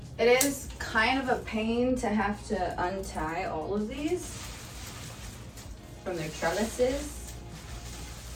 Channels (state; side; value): identical; both; correlation 1.00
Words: It is kind of a pain to have to untie all of these from their trellises,